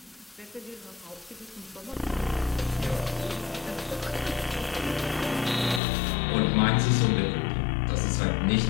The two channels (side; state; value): right; drops out; at 5.8 s